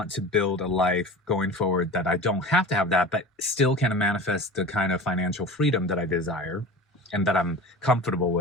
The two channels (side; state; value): both; normal; correlation 0.35